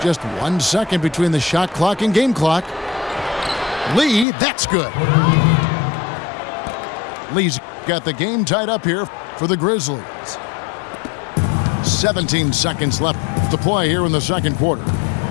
Just 1 second between the shot clock and game clock. Lee, that's good. Lee's got the game tied up here for the Grizzlies. 17 seconds left to play here in the second quarter.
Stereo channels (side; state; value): right; drops out; at 4.2 s